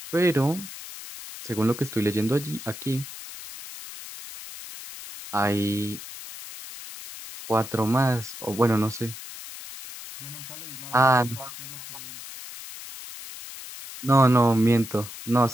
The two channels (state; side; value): noise; left; hiss, 13 dB below the sound